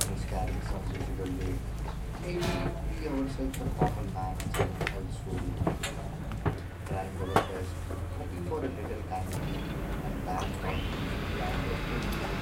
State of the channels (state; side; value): identical; both; correlation 1.00